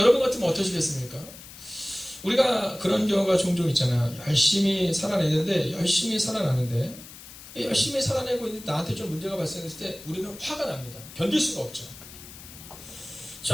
같으면 어떠시겠습니까? 우리가 그런 경우가 종종 있잖아요. 열심히 살아내는데 열심히 살아나는데 열심히 살아내고 있는데 나한테 좀 문제가 발생했을 때 우리는 화가 납니다. 견딜 수가 없죠.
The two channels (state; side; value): noise; left; hiss, 16 dB below the sound